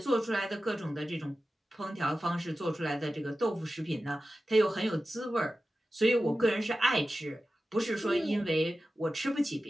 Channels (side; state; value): both; normal; correlation 0.94